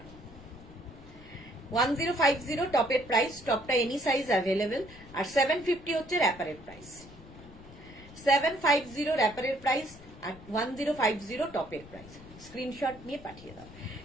1050 টপের প্রাইস, টপটা এনি সাইজ অ্যাভেলেবেল, আর 750 হচ্ছে র্যাপারের প্রাইস। 750 র্যাপারের প্রাইস আর 1050 টপের প্রাইস। স্ক্রিনশট নিয়ে পাঠিয়ে দাও।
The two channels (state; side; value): noise; left; rumble, 19 dB below the sound